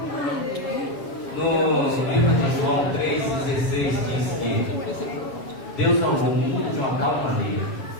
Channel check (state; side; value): late; right; 7.2 ms